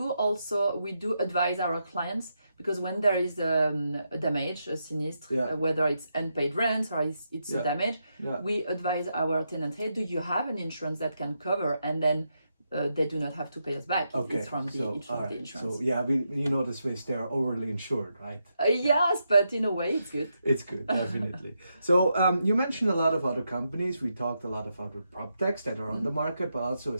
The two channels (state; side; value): inverted; both; correlation -0.83